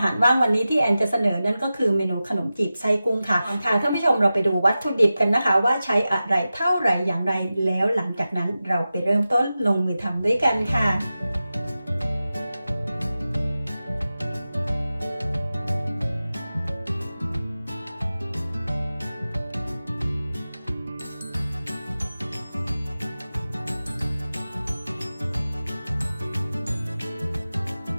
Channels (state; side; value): inverted; both; correlation -0.94